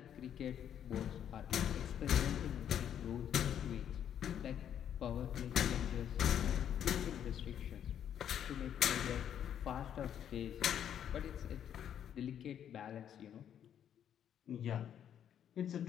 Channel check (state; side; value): quieter; right; 9.5 dB